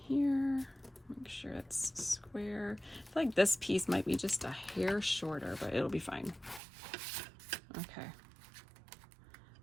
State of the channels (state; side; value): drops out; left; at 6.6 s